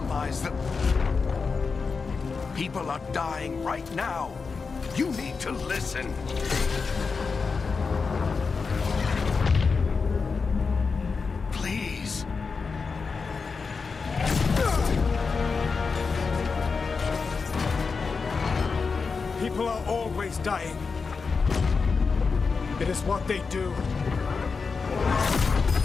the... People are dying right now. You need to listen. Please. People are always dying. It is what they do.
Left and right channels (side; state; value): right; quieter; 4.9 dB